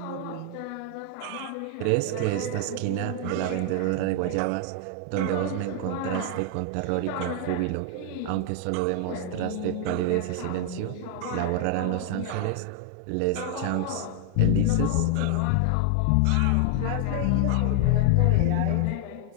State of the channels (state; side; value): different; both; correlation 0.00